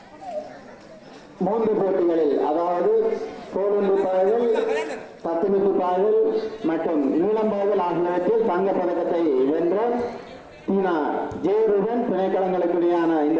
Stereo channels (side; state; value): both; identical; correlation 1.00